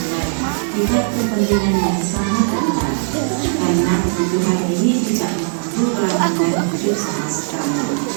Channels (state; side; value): silent; left; digital silence